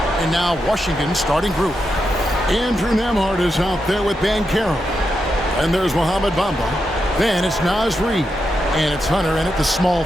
now Washington's starting group. Andrew Nembhard is out there with Banchero. And there's Mohamed Bamba. Then it's Naz Reid. And it's Hunter in at the small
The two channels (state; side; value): normal; both; correlation 0.85